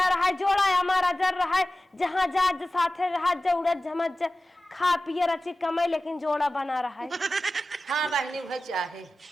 रहा है जोड़ा हमारा जर रहा है जहाँ जा साथे रहा जउड़त झमत खा पिए रची कमाई लेकिन जोड़ा बना रहा है हाँ बहनी वह चाहे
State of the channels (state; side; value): normal; both; correlation 0.96